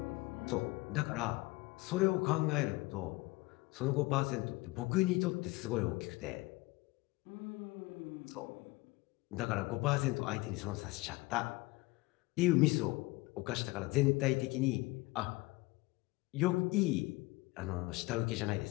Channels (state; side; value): quieter; right; 22.5 dB